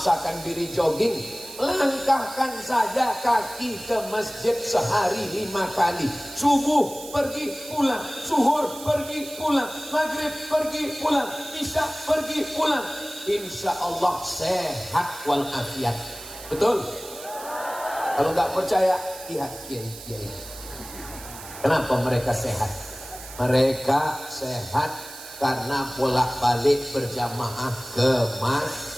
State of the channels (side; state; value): right; noise; hiss, 14 dB below the sound